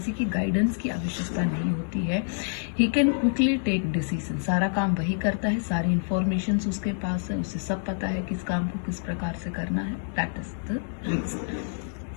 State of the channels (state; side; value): silent; right; digital silence